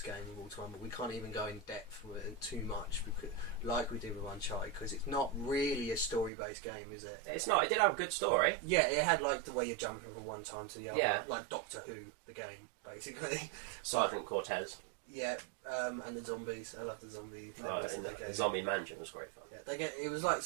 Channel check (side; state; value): left; drops out; at 6.3 s